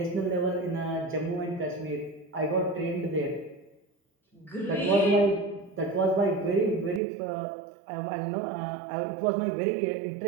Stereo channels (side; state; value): left; drops out; at 7.0 s